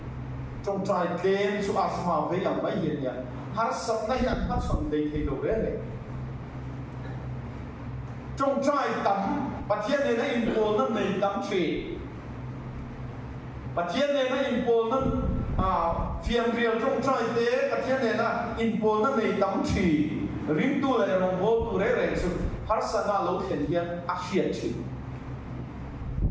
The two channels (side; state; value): both; identical; correlation 1.00